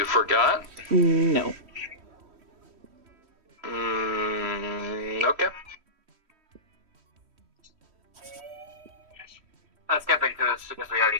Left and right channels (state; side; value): late; left; 3.1 ms